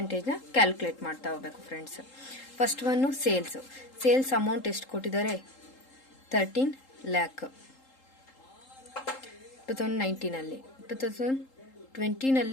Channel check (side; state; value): right; late; 3.8 ms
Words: ಕ್ಯಾಲ್ಕುಲೇಟ್ ಮಾಡ್ತಾ ಹೋಗ್ಬೇಕು friends. First one sales amount ಎಷ್ಟು ಕೊಟ್ಟಿದ್ದಾರೆ? 13 lakh 2019ನಲ್ಲಿ.